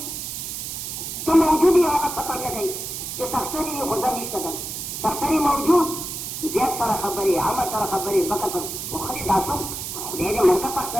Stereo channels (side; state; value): right; noise; hiss, 6 dB below the sound